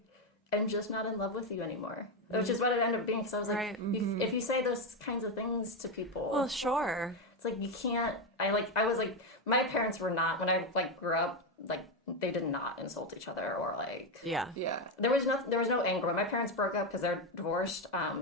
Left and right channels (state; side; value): normal; both; correlation 0.09